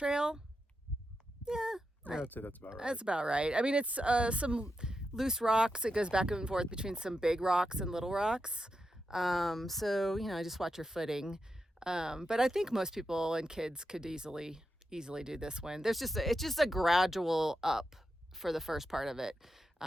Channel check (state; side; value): normal; both; correlation 0.87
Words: Yeah, I'd say that's about right. That's about right. I mean, it's some loose rocks. It goes back and forth between some big rocks and little rocks. So, just watch your footing. But I think most people and kids could easily do this one. It's just a gradual up for the first part of it.